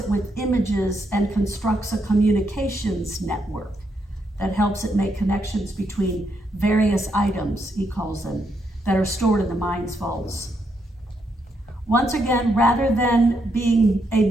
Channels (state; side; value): normal; both; correlation 0.78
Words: with images and constructs a communications network that helps it make connections between various items, he calls them, that are stored in the mind's vaults. Once again, rather than being a